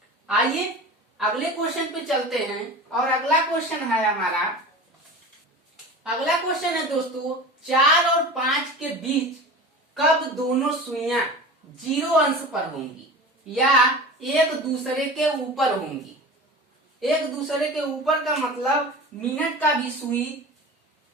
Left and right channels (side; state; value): both; normal; correlation 0.34